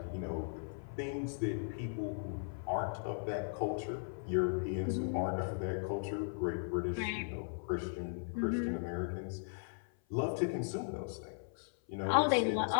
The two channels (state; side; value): silent; right; 53 dB below the other